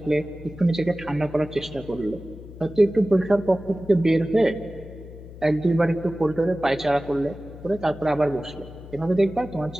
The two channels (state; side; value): noise; left; hum, 15 dB below the sound